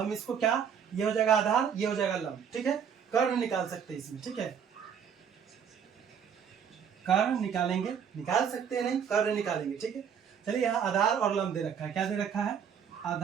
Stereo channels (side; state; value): left; quieter; 7.6 dB